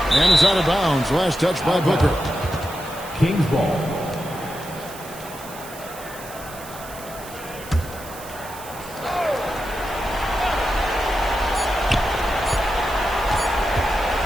And it's out of bounds. Last touch by Booker. Kings ball.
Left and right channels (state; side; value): noise; right; hiss, 16 dB below the sound